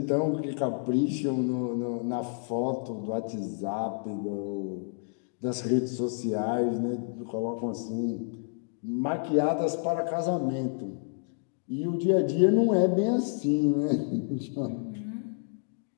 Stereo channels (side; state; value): right; silent; digital silence